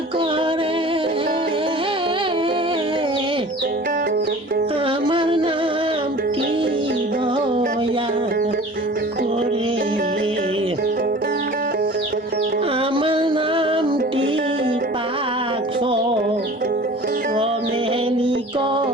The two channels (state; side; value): normal; both; correlation 0.42